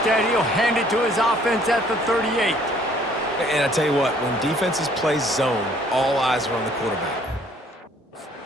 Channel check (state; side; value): normal; both; correlation 0.60